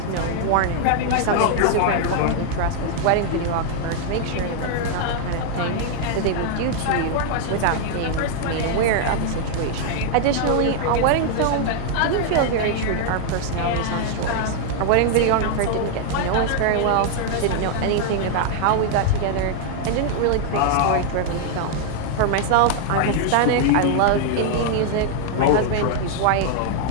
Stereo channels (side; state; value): both; different; correlation 0.00